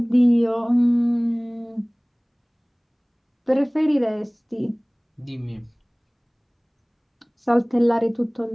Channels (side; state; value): both; identical; correlation 1.00